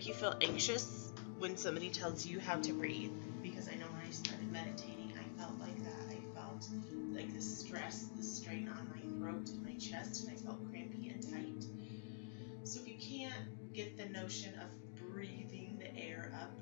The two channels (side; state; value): right; silent; digital silence